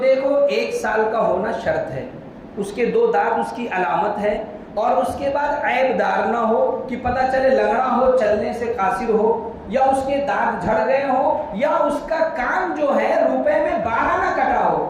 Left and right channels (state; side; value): identical; both; correlation 1.00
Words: 1 سال کا ہونا شرط ہے، اس کے 2 دانت اس کی علامت ہے، اور اس کے بعد عیب دار نہ ہو کہ پتہ چلے لنگڑا ہو، چلنے سے قاصر ہو، یا اس کے دانت جھڑ گئے ہو، یا اس کا کان جو ہے روپے میں 12 نہ کٹا